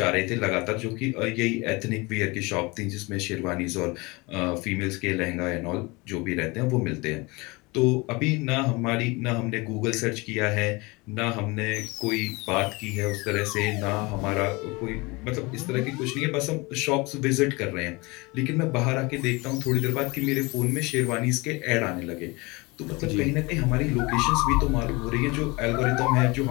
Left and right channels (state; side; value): quieter; right; 25.2 dB